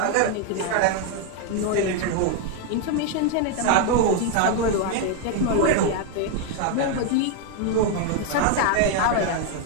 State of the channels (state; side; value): different; both; correlation 0.01